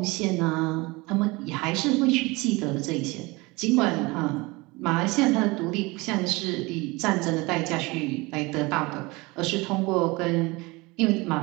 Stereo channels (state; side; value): quieter; left; 24.0 dB